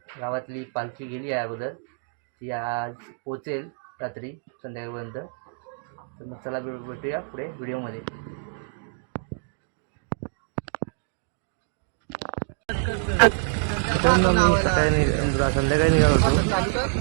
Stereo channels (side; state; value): left; silent; 61 dB below the other